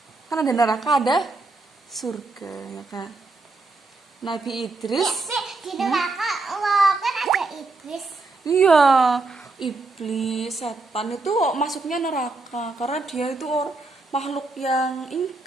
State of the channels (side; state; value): left; quieter; 3.4 dB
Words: Kan ada neraka, ada surga ya kan. Nabi Idris Di neraka kan ada iblis. Iya, iblis, setan itu masuknya neraka karena dia itu makhluk yang